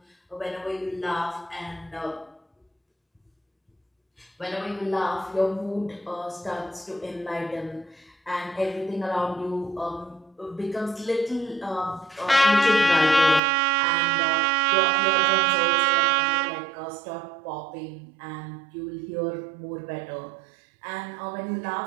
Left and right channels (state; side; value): drops out; left; at 13.4 s